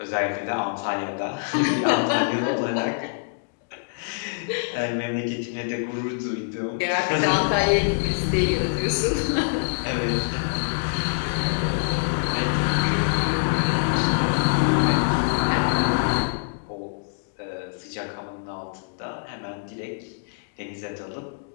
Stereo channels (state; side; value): silent; right; digital silence